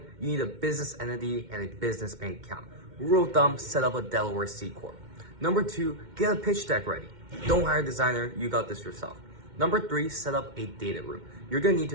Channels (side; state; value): left; late; 2.1 ms